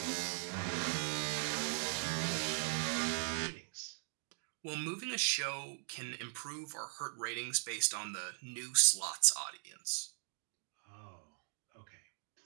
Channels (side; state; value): left; silent; 52 dB below the other